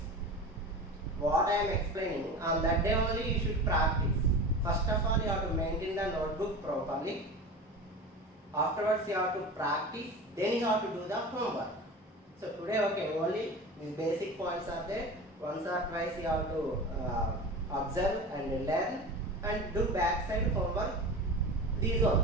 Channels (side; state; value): both; normal; correlation 0.31